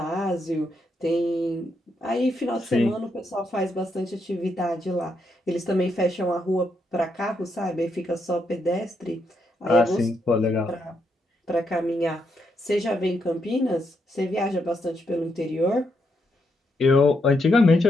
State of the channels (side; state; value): both; normal; correlation 0.79